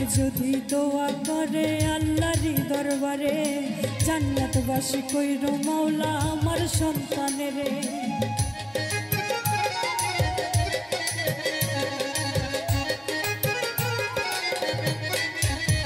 যদি দোয়া করে আল্লাহরই দরবারে, জান্নাতবাসী কইরো মাওলা আমার সন্তানেরে।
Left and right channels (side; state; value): both; identical; correlation 1.00